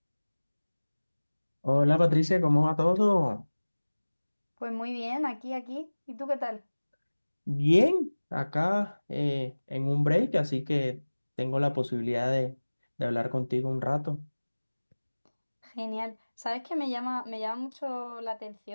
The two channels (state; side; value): inverted; both; correlation -1.00